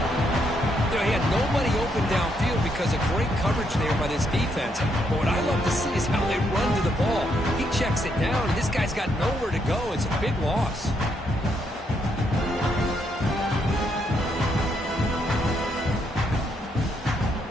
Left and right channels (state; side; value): normal; both; correlation 0.76